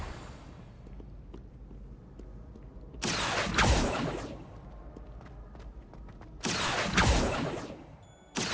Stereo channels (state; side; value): identical; both; correlation 1.00